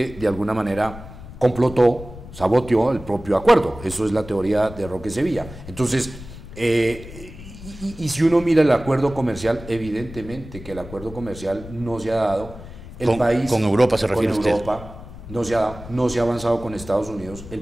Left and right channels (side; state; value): left; noise; rumble, 15 dB below the sound